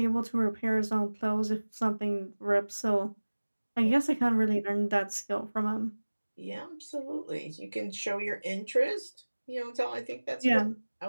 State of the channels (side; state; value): both; inverted; correlation -1.00